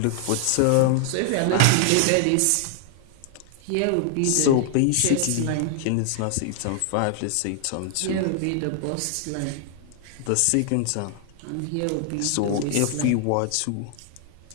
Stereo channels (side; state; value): both; different; correlation 0.00